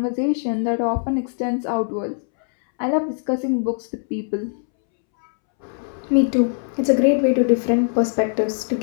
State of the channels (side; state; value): right; silent; 65 dB below the other